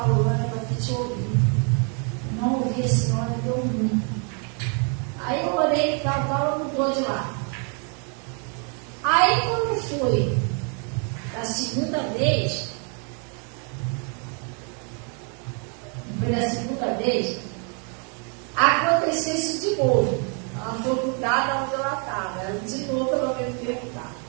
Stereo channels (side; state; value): left; quieter; 39.0 dB